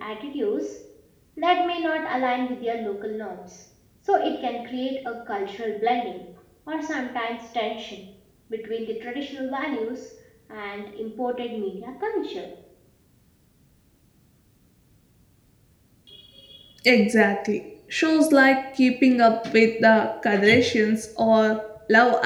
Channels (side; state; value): both; identical; correlation 1.00